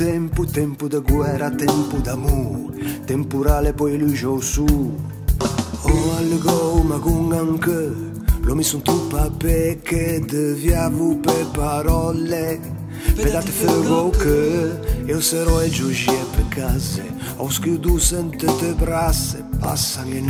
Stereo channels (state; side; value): identical; both; correlation 1.00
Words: tempo da guerra, tempo d'amore, temporale poi lui giù su. Oh allegò ma con anche, lo mi son truppa perché deviavo per parole. Pedate ferro che io sarò e giugie per case, ho schiudo sentite brasse, passano le